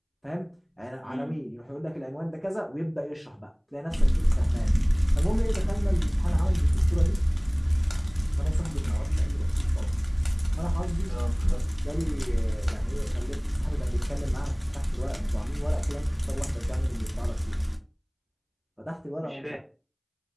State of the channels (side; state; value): both; identical; correlation 1.00